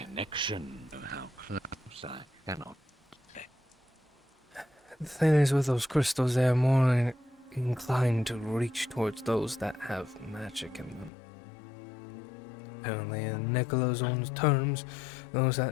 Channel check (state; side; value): drops out; right; at 11.1 s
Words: connection of how close I cannot say. The thing is, with those crystals, they are more inclined to reach towards those that have magic in them. Apparently, in Nicola's own terms, those